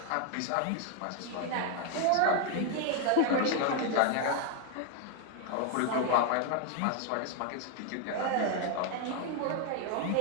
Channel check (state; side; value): different; both; correlation 0.01